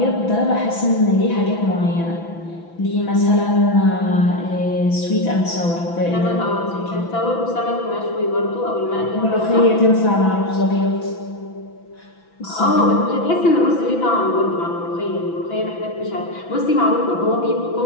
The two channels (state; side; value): late; right; 6.0 ms